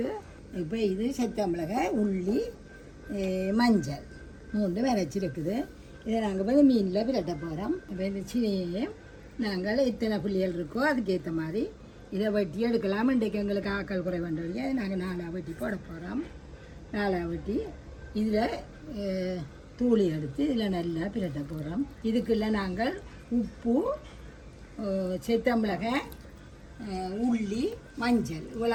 இப்போ இது செத்தமிளகாய், உள்ளி, மஞ்சள் 3 அரைச்சிருக்குது. இதை நாங்கள் வந்து மீனில் பிரட்ட போகிறோம். இப்போ இந்த சின்னையையும் நாங்கள் எத்தனை புள்ளிகள் இருக்கோ அதுக்கேற்ற மாதிரி இதை வெட்டி எடுக்கலாம். இன்றைக்கு எங்களுக்கு ஆக்கள் குறை வேண்டிய அதை நாங்கள் 4 வெட்டி போட போகிறோம். 4 வெட்டி இதில் தூளி எடுத்து இதில் நல்லா பிரட்ட போகிறோம். இதுக்குள்ள நாங்கள் உப்பு, செத்தமிளகாய், உள்ளி, மஞ்சள்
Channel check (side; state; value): both; identical; correlation 1.00